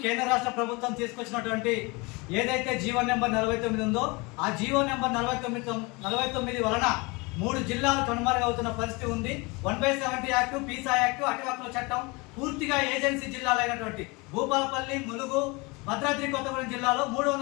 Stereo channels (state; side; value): quieter; right; 26.6 dB